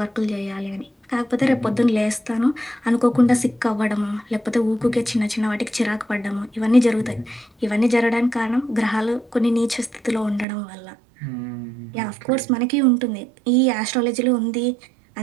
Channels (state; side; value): drops out; left; at 10.5 s